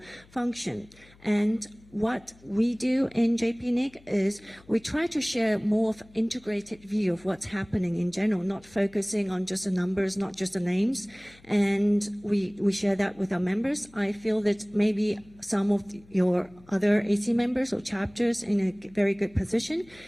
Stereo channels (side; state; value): left; noise; hum, 27 dB below the sound